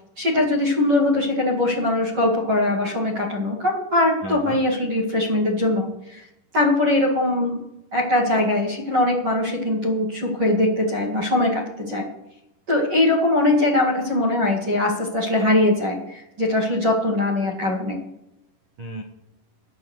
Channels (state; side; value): late; left; 11 ms